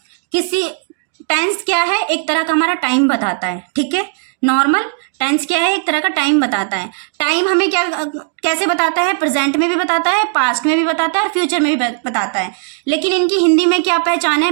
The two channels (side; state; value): left; silent; digital silence